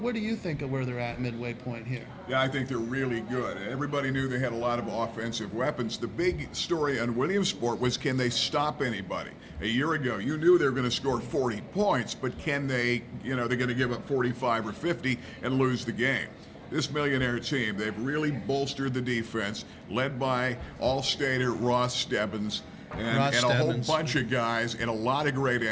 do you think of where they're at midway point here? Yeah, I think they're really good. Everybody knew they had a lot of offensive weapons. The big story on Williamsport was, can they stop anybody? A year ago, you knew they were going to score 40 points, but can they, they're going to give up 45 or 50 and lose the game. This Millionaire team, they've really bolstered the defense, led by All-Stater Ross Stebbins. And a whole bunch of guys and a lot of great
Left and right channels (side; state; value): both; identical; correlation 1.00